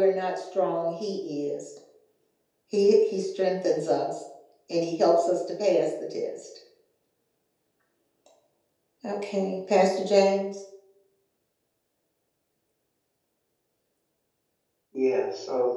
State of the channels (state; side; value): identical; both; correlation 1.00